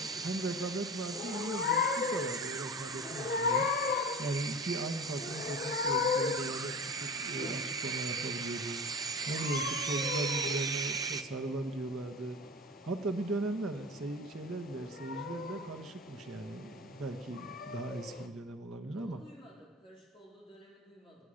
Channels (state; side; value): normal; both; correlation 0.33